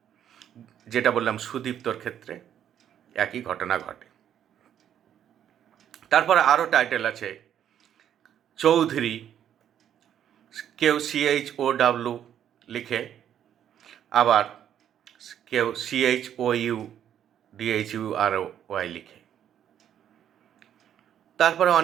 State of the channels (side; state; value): left; quieter; 9.9 dB